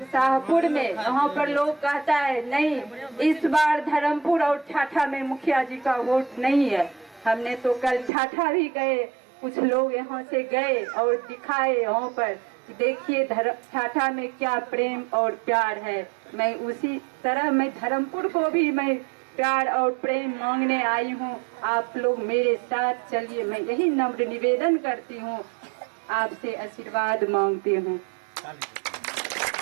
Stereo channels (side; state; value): left; drops out; at 8.1 s